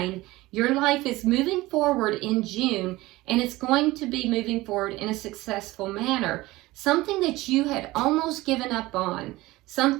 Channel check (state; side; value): quieter; left; 19.1 dB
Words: Your life is moving forward in June, and it's going to be moving forward in a successful manner. Something that you had almost given up on,